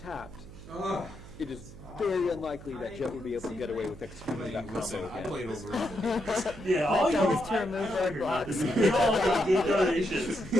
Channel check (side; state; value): right; noise; hum, 16 dB below the sound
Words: Oh. It is very unlikely that Jet would be able to get away with executing that Listen, combo I again. played over. Yeah, My all job you is to remove roadblocks. all good donations.